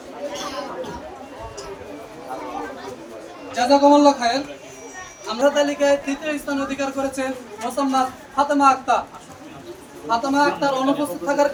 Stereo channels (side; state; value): both; identical; correlation 1.00